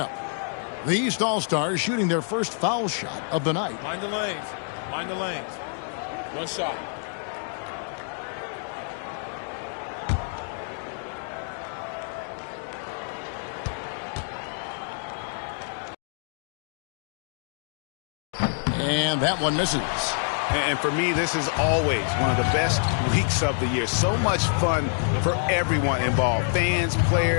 The East All-Stars shooting their first foul shot of the night. Mind the lanes. Mind the lanes. One shot. And that one misses. And for me, this is always one of the best weeks of the year. So much fun for everyone involved. Fans,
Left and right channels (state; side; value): silent; right; 60 dB below the other